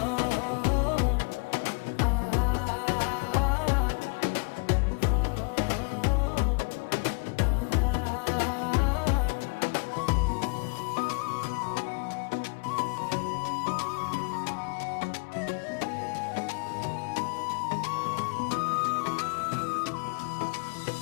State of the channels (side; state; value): right; quieter; 33.4 dB